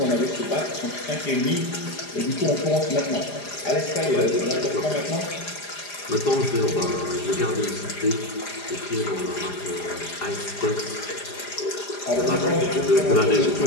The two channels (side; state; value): right; late; 4.9 ms